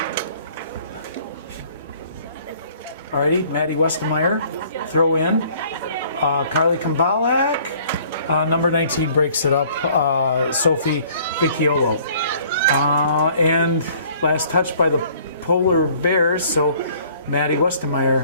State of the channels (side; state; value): both; inverted; correlation -0.56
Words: Alrighty, Maddie Westermeyer, throw in. Carly Kambalek, number 19 breaks it up. Sophie Vecchiolo. And last touch by the Polar Bears, so Maddie